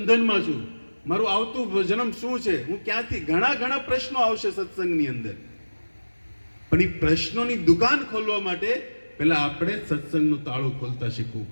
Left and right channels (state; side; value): inverted; both; correlation -1.00